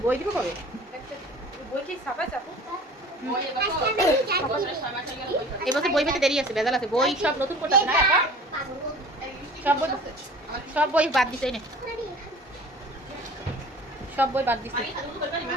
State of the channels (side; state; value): both; normal; correlation 0.44